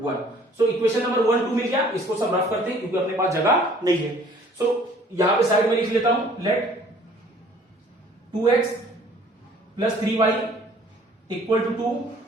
1। So equation number 1 2 मिल गया, इसको सब रफ करते हैं क्योंकि अपने पास जगह नहीं है। सो यहां पे साइड में लिख लेता हूं, let 2x plus 3y equal to 2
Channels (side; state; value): both; normal; correlation 0.55